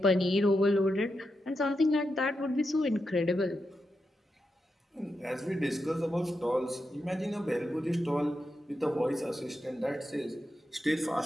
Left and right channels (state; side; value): normal; both; correlation 0.87